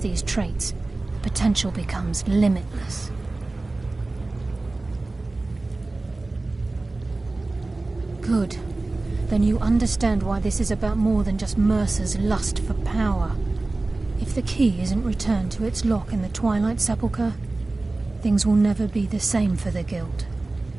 traits, the potential becomes limitless. Good. Then you understand why this is about more than just Mercer's lust for power. If the key isn't returned to its lock in the Twilight Sepulchre, things will never be the same for the Guild.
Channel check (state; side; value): quieter; left; 3.1 dB